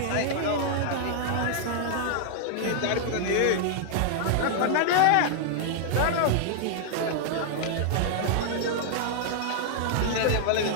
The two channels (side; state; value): both; different; correlation -0.01